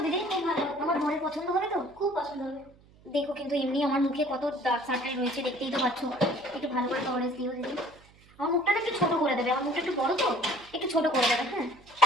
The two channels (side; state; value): right; noise; hum, 27 dB below the sound